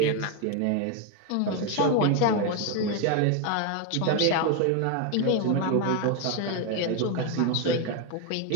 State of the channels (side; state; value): both; different; correlation 0.01